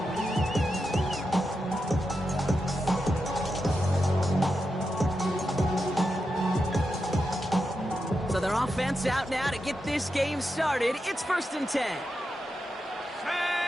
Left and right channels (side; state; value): both; normal; correlation 0.88